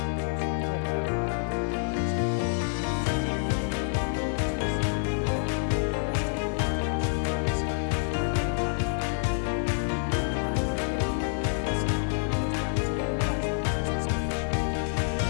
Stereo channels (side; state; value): right; silent; digital silence